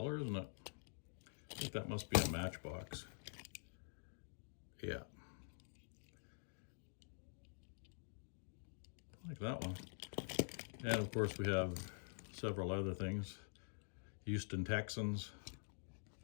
isn't it? I think that must be a Matchbox. Yeah. I like that one. And of course we have several other things. Houston Texans.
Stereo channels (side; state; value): right; silent; digital silence